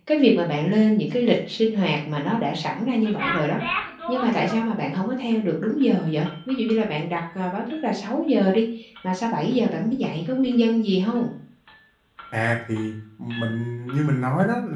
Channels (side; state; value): both; identical; correlation 1.00